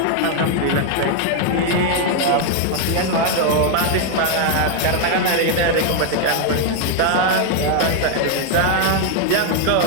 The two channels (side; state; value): both; different; correlation 0.00